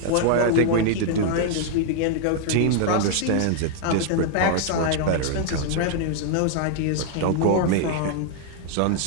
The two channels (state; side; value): different; both; correlation 0.00